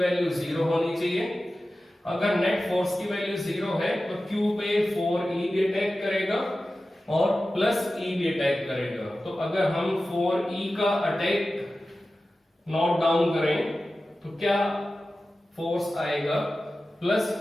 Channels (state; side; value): normal; both; correlation 0.95